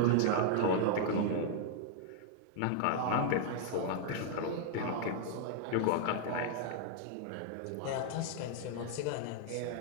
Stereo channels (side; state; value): both; different; correlation -0.01